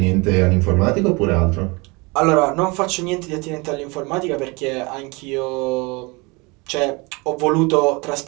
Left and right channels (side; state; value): left; quieter; 27.3 dB